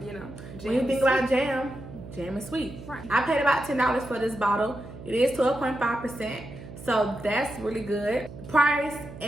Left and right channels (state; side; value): noise; right; hum, 14 dB below the sound